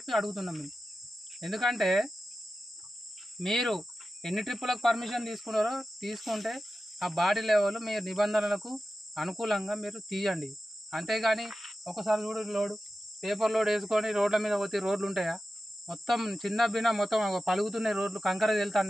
అడుగుతున్నాం మేము. ఎందుకంటే మీరు ఎన్ని ట్రిప్పులకు పర్మిషన్ తీసుకున్నారో తీసుకుంటే ఆ బాడీ లెవెల్ మీ నిబంధనలకు అనుకూలంగా మీరు తీయండి. అంతేగాని ఒకసారి లోడు పేపర్ లోడ్ వేసుకొని రోడ్ల మీద పోతే రోడ్లు ఉంటాయా? మొత్తం చిన్న బిన్న మొత్తం పలుగుతున్నాయి రోడ్లు, కంకర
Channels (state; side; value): normal; both; correlation 0.93